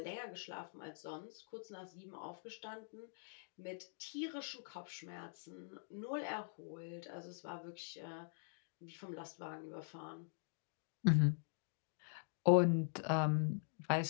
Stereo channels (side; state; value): right; silent; digital silence